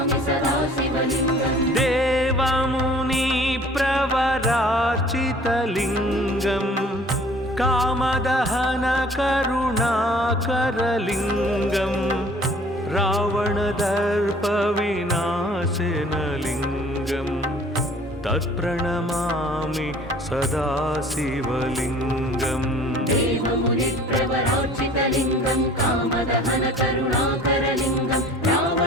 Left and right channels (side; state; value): both; normal; correlation 0.51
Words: सदा शिवलिङ्गम् देवमुनिप्रवरार्चितलिङ्गम् कामदहनकरुणाकरलिङ्गम् रावणदर्पविनाशनलिङ्गम् तत्प्रणमामि सदा शिवलिङ्गम् देवमुनिप्रवरार्चितलिङ्गं कामदहनकरुणाकरलिङ्गं